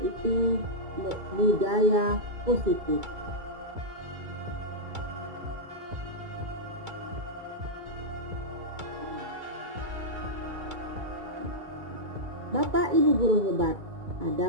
budaya positif. Bapak Ibu guru hebat,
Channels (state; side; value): late; left; 2.2 ms